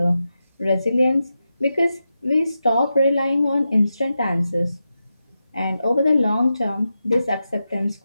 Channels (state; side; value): inverted; both; correlation -0.89